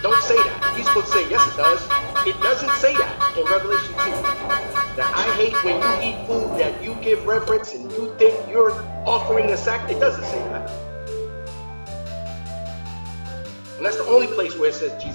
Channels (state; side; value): inverted; both; correlation -1.00